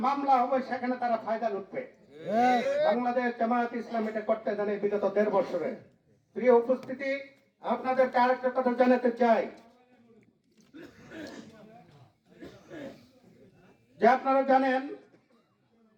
মামলা হবে, সেখানে তারা ফায়দা লুটবে। বাংলাদেশ জামায়াত ইসলাম এটা করতে জানে বিগত 1.5 বছরে। প্রিয় উপস্থিতি, আপনাদেরকে আরেকটা কথা জানাতে চাই যে আপনারা জানেন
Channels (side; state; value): both; identical; correlation 1.00